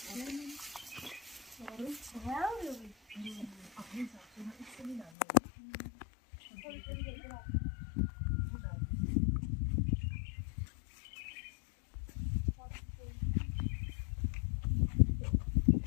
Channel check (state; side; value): drops out; right; at 5.1 s